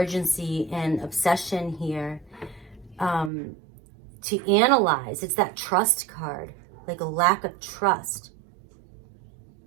and obsession here to analyze. It's that trust card, like a lack of trust.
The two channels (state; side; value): drops out; left; at 3.3 s